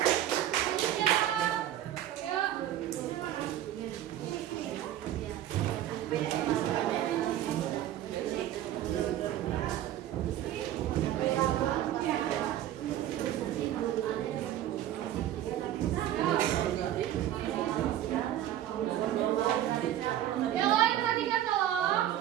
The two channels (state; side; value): quieter; left; 12.2 dB